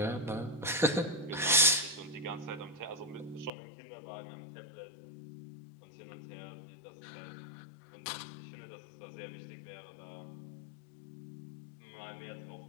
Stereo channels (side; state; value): right; drops out; at 3.5 s